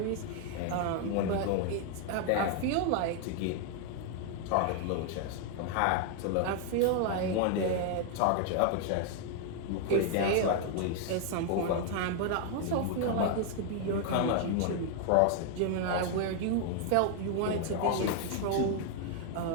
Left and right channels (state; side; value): different; both; correlation 0.00